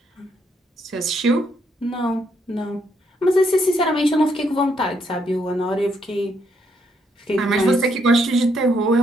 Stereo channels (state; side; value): normal; both; correlation 0.74